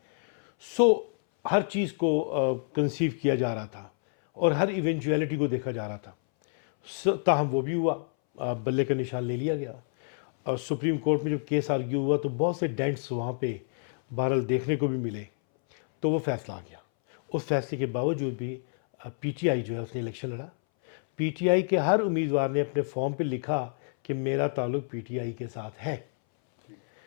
سو ہر چیز کو کنسیو کیا جا رہا تھا، اور ہر ایونچویلٹی کو دیکھا جا رہا تھا۔ تاہم وہ بھی ہوا، بلے کا نشان لے لیا گیا، اور سپریم کورٹ میں جب کیس آرگیو ہوا تو بہت سے ڈینٹس وہاں پہ بہرحال دیکھنے کو بھی ملے، تو وہ فیصلہ آ گیا۔ اس فیصلے کے باوجود بھی پی ٹی آئی جو ہے اس نے الیکشن لڑا۔ پی ٹی آئی کے ہر امیدوار نے اپنے فارم پہ لکھا کہ میرا تعلق پی ٹی آئی کے ساتھ ہے. ٹھیک.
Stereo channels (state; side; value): silent; right; 59 dB below the other